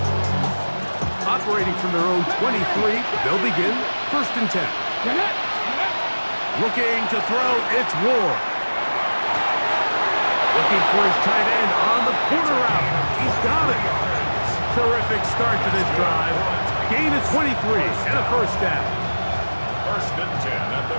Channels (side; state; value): both; inverted; correlation -1.00